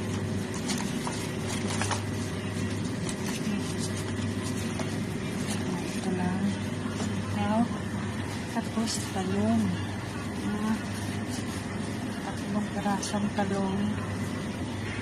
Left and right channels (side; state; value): both; identical; correlation 1.00